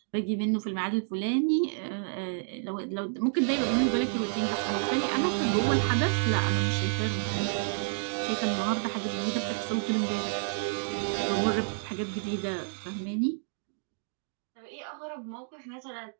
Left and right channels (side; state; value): left; silent; digital silence